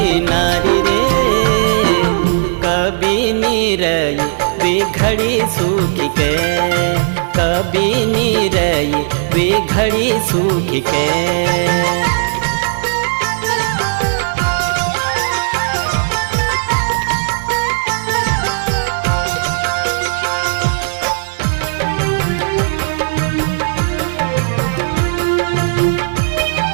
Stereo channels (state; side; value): silent; left; digital silence